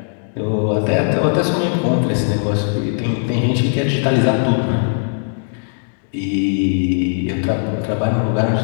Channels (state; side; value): silent; right; digital silence